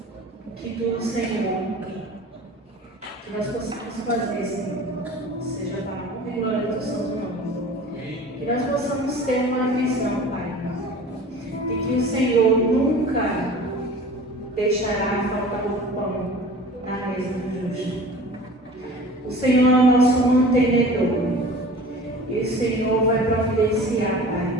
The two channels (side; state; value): both; normal; correlation 0.41